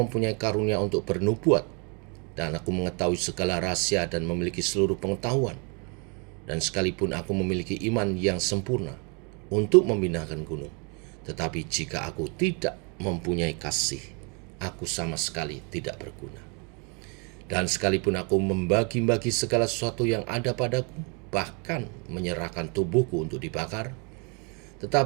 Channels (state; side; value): quieter; left; 34.4 dB